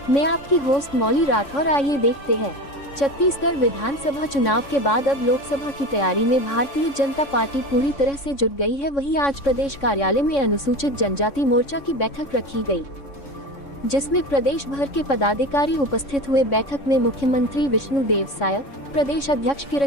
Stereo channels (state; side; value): late; right; 3.6 ms